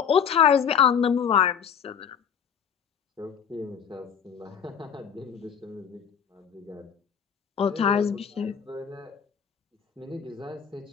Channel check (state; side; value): quieter; right; 7.6 dB